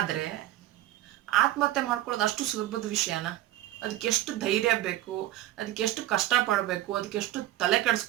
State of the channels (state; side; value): quieter; left; 14.3 dB